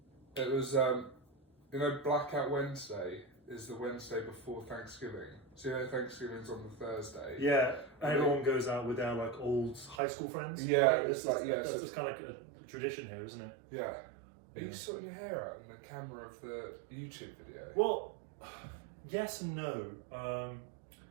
It was, Blackout Wednesday is the Wednesday before Thanksgiving. So Thanksgiving's on the Thursday. Yeah, and everyone goes out with their like old high school friends. Yeah, right? That's just kind of like a tradition here, isn't it? Yeah. Are you sorting your hair out in the camera of the YouTube video? Well, yes and no.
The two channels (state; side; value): drops out; left; at 10.0 s